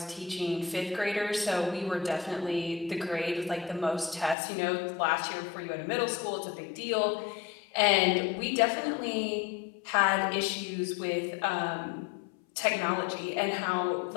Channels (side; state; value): right; drops out; at 4.4 s